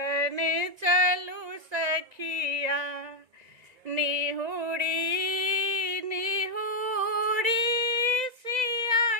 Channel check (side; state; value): left; late; 1.9 ms